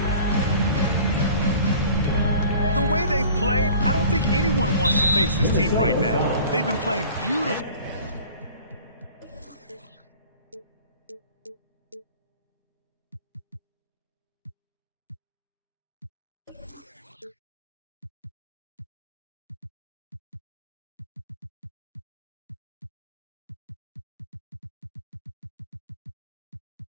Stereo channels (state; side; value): inverted; both; correlation -0.45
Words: The way they've played, I don't think anyone wants to face this team right now. They've been playing beautiful.